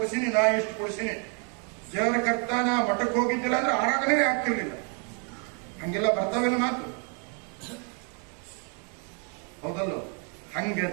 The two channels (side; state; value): left; quieter; 39.8 dB